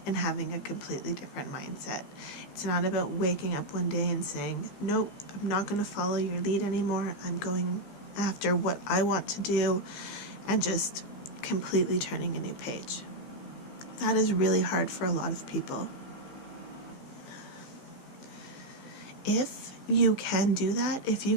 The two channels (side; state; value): right; late; 15 ms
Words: and having a completely different mindset. It's not about waking up one day and saying, nope, I'm not going to follow your lead anymore. I'm going after what I want to do, and just completely turning a new page. That is really hard for a lot of people. If you can do that, if you